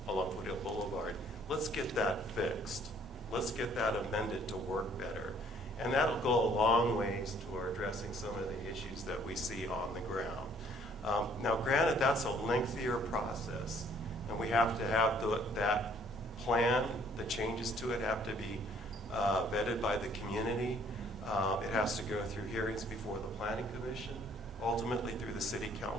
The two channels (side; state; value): both; normal; correlation 0.61